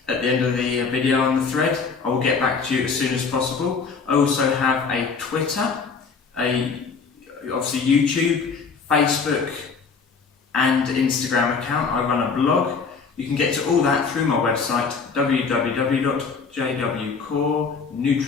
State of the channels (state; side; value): quieter; right; 5.2 dB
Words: at the end of the video on the thread. I will get back to you as soon as possible. I also have a Twitter, obviously YouTube, Facebook and Instagram account. I run a blog. You can get to all that through my website